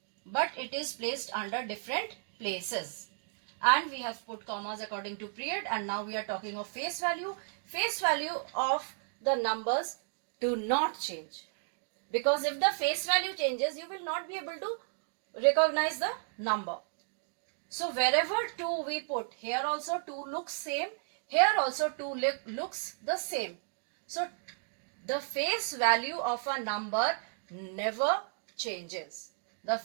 but it is placed under different places. And we have put commas according to period, and now we are talking of face value. Face value of the numbers do not change, because if the face value changes, you will not be able to recognize the number. So wherever 2 we put, here also 2 looks same, here also 2 looks the same. So the face value of a number never changes. The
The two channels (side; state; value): left; silent; digital silence